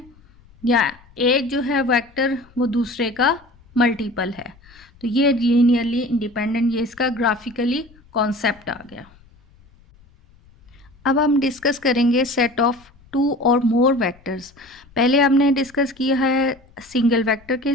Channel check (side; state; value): left; noise; rumble, 28 dB below the sound